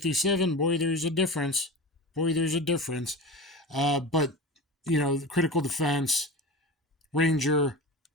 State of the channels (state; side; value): normal; both; correlation 0.30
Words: boy, there's a difference. But, you know, the Critical Defense, Ranger,